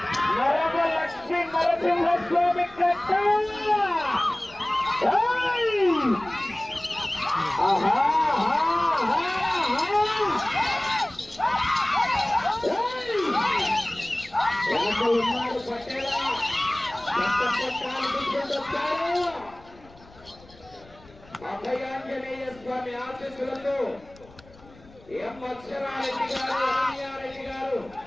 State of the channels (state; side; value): noise; left; rumble, 24 dB below the sound